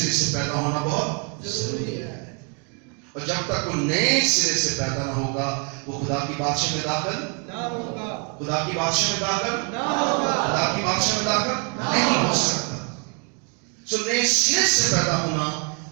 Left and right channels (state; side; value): quieter; left; 37.6 dB